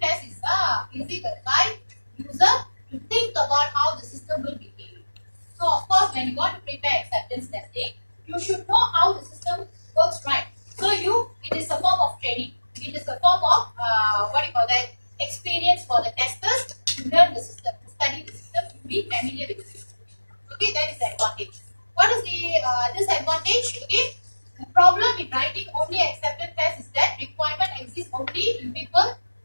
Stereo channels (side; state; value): both; inverted; correlation -1.00